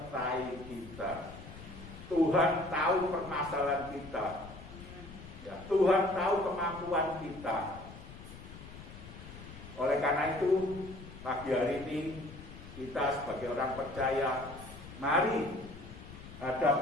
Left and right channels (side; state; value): left; noise; rumble, 15 dB below the sound